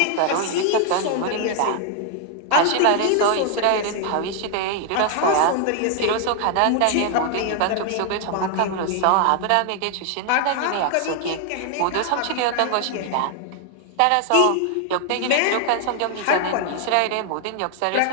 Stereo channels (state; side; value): different; both; correlation 0.00